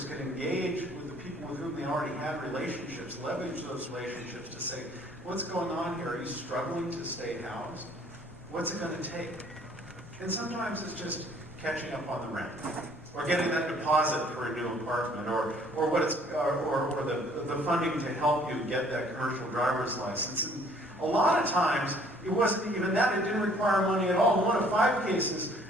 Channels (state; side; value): normal; both; correlation 0.58